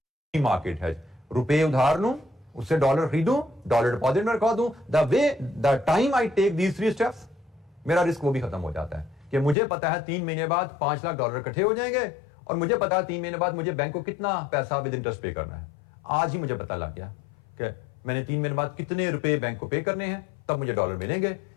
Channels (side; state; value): right; drops out; at 9.6 s